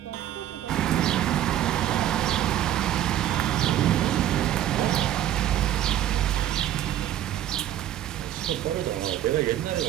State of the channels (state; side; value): quieter; left; 11.9 dB